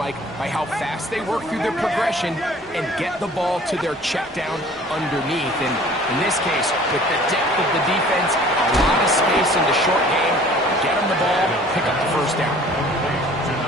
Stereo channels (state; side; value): normal; both; correlation 0.50